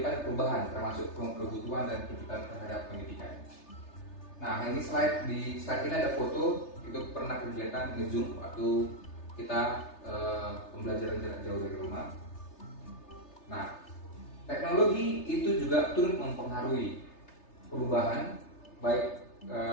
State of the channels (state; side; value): late; right; 3.3 ms